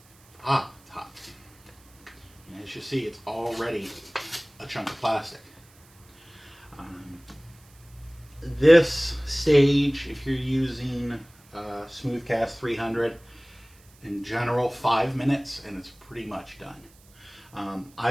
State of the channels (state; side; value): noise; right; hiss, 28 dB below the sound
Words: hot. And as you see, it's already a chunk of plastic. This stage, if you're using Smoothcast 300, in general 5 minutes, and it's pretty much done.